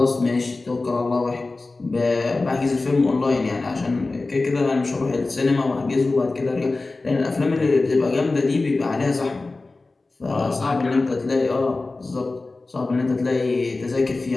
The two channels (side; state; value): right; quieter; 3.4 dB